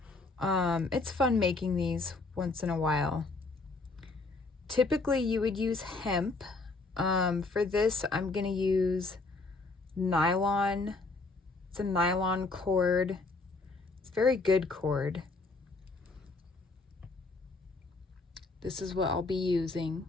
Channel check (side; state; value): right; quieter; 3.6 dB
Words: It's fun making these once in a while. Typically you would use hemp. For this I'm going to use nylon. It's a nylon cord. It's a very good cord. This is what I'll be using.